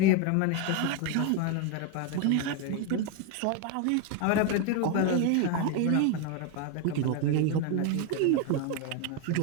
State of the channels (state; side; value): different; both; correlation 0.01